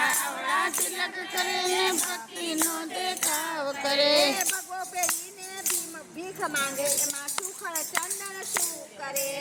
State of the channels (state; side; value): identical; both; correlation 1.00